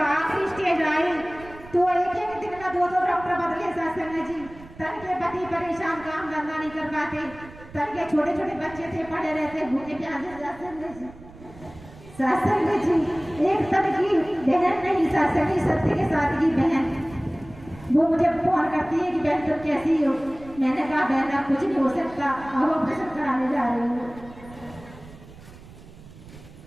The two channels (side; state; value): right; noise; rumble, 19 dB below the sound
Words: आखिरी स्टेज आई तो एक दिन में 2 डॉक्टर बदले साथ संगत जी। तन के पति परेशान, काम धंधा नहीं कर पाते, तन के छोटे छोटे बच्चे थे पड़े रहते भूखे प्यासे साथ संगत जी। साथ संगत जी एक तन की बहन नहीं साथ संगत, सत्य के साथ की बहन, वो मुझे फोन करती है कि बहन तुम कैसी हो। मैंने कहा बहन अब कुछ नहीं हो सकता, अब ऑपरेशन कराने जा रही हूँ।